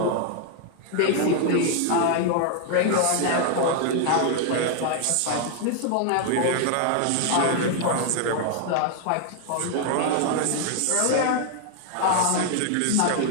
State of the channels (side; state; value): both; different; correlation 0.00